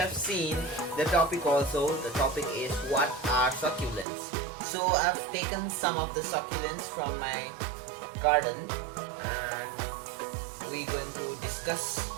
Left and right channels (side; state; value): left; drops out; at 4.0 s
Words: seen the topic also. The topic is what are succulents. So I've taken some of the succulents from my garden and we're going to discuss